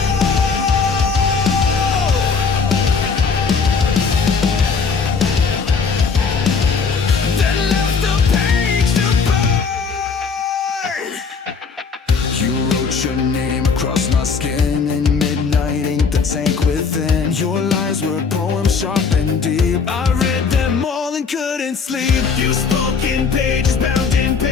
then left the page to burn. You wrote your name across my skin in midnight ink, the tank within. Your lies were poems sharp and deep. I read them all and couldn't sleep. You spoke in pages bound in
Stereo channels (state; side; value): quieter; right; 5.3 dB